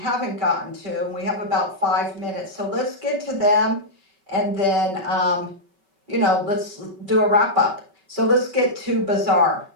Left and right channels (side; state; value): left; late; 5.2 ms